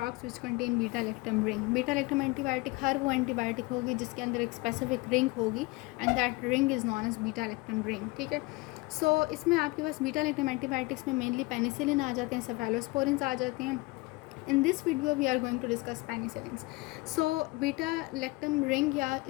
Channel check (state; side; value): quieter; right; 23.5 dB